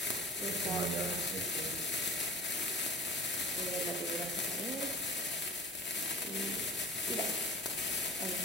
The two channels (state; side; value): normal; both; correlation 0.40